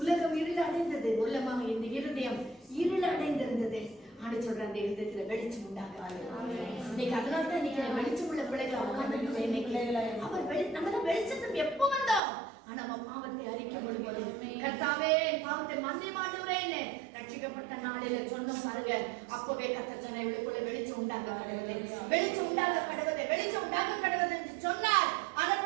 இருள் அடைந்தது. உள்ளமாக இந்த இருதயம் இருள் அடைந்திருந்தது. ஆண்டு சொல்ற அந்த இருதயத்துல வெளிச்சம் உண்டாக. இன்னைக்கு அதனால தான் இன்னைக்கு வெளிச்சம் உள்ள பிள்ளைகளை உட்கார்ந்து நம்ம வெளிச்சத்துக்கு எப்போ வந்தோம், ஆனா நம்ம பாவத்தை அறிக்கை பண்ணும்போது கர்த்தாவே பாவத்தை மன்னிமாடுறேன்னு ரட்சிக்கப்பட்ட நாளில சொன்ன பாருங்க, அப்பவே கர்த்தர் சொன்ன இவளுக்குள்ள வெளிச்சம் உண்டாக கடவுளே, வெளிச்சம் உண்டாக கடவுளே, வெளிச்சம் உண்டாக கடவுளே என்று சொன்னார்.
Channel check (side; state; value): left; drops out; at 12.2 s